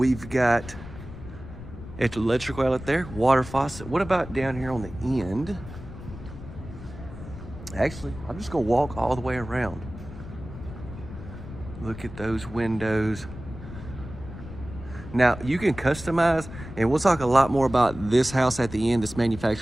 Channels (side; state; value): left; noise; rumble, 13 dB below the sound